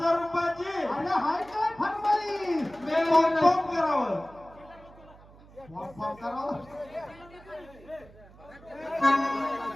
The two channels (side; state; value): right; noise; hum, 23 dB below the sound